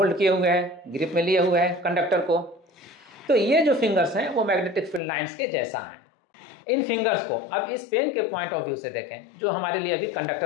किए हुए हैं, ग्रिप में लिए हुए हैं कंडक्टर को। तो ये जो फिंगर्स हैं वो मैग्नेटिक फील्ड लाइंस के जैसा हैं। इन फिंगर्स को अब इस पेन के पॉइंट ऑफ व्यू से देखें, जो हमारे लिए अभी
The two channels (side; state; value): right; drops out; at 5.0 s